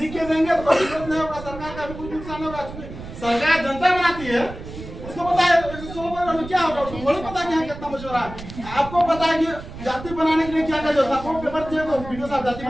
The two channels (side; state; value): right; noise; rumble, 12 dB below the sound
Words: लिख के देंगे तो कोई दिक्कत नहीं होगा, सरकार का भी कुछ नुकसान होगा। सरकार जनता बनाती है, उसको पता है 116 परिवार में क्या होगा, उसको थोड़ी पता है कितना मछुआरा है। आपको पता है कि जाति बनाने के लिए क्या क्या जो था, वो पेपर दिए तो वीडियो साहब जाति